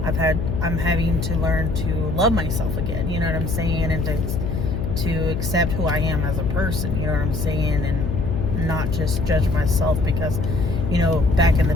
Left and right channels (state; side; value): noise; left; hum, 3 dB below the sound